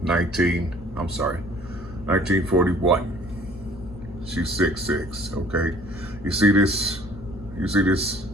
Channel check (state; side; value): noise; left; hum, 15 dB below the sound